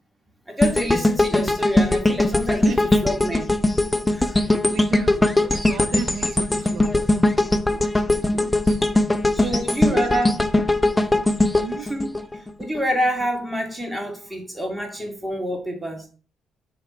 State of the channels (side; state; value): both; normal; correlation 0.93